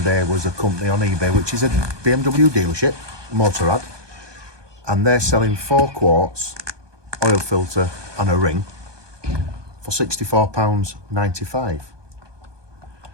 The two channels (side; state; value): left; late; 1.2 ms